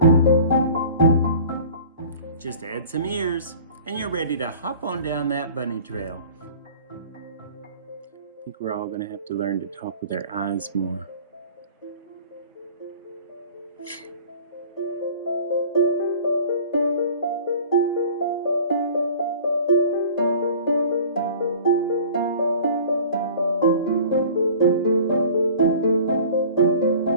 Just add some ears, and you're ready to hop on down that bunny trail. I think we're all going to have to learn to talk with our eyes more.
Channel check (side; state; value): both; inverted; correlation -0.44